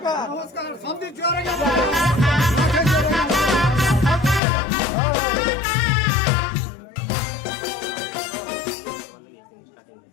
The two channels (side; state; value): right; drops out; at 4.4 s